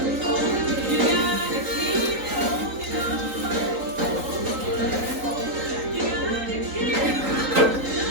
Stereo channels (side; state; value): left; late; 3.9 ms